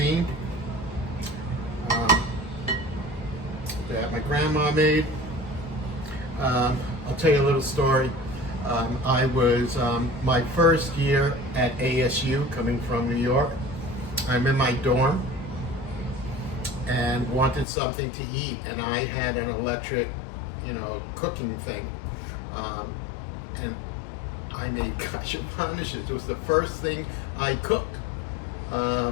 that my grandma made. I'll tell you a little story. I was my first year at ASU, coming from New York. I'm in my dorm and wanted something to eat, and I had an electric, cooking thing, and I made Kasha Varnishkes. It was the first thing I cooked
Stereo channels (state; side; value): drops out; right; at 17.7 s